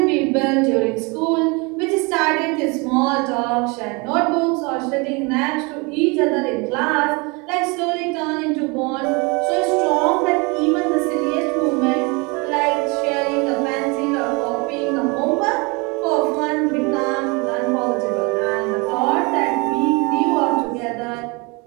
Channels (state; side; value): quieter; left; 28.8 dB